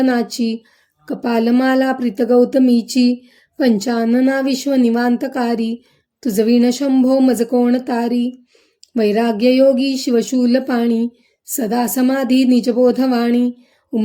कपालमाला प्रीतगौतमीची, पंचानना विश्वनिवांतकारी, तुझवीण शंभो मज कोण तारी, वैराग्ययोगी शिवशूलपाणी, सदा समाधी निजबोधवाणी,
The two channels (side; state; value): both; identical; correlation 1.00